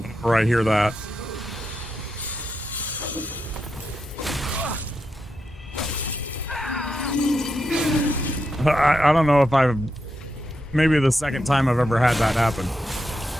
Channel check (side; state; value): both; normal; correlation 0.85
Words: Whenever I hear that. I don't know if I've... Maybe the second time I've ever had that happen.